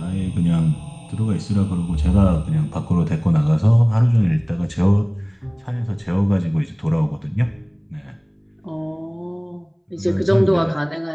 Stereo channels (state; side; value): identical; both; correlation 1.00